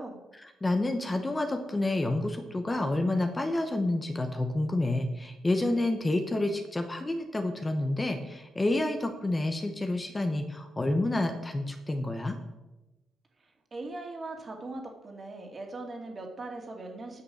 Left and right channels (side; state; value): both; normal; correlation 0.94